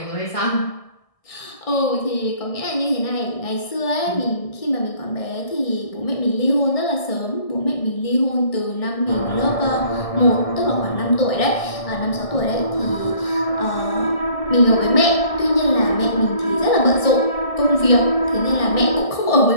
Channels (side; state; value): right; late; 1.6 ms